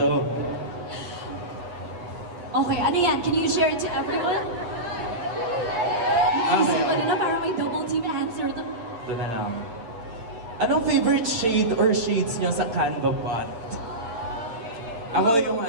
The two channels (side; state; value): left; late; 8.9 ms